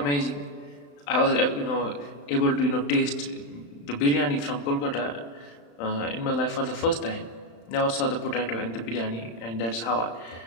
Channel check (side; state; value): right; late; 35 ms